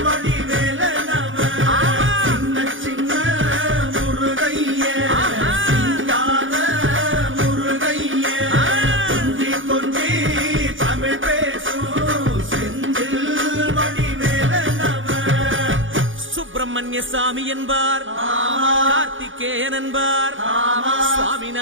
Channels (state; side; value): late; left; 0.57 ms